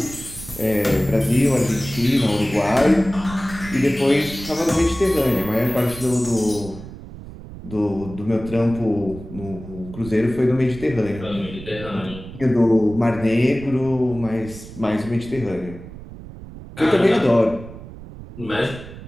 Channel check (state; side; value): noise; right; rumble, 14 dB below the sound